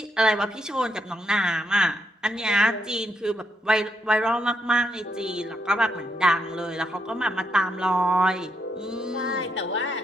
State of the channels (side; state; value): both; normal; correlation 0.78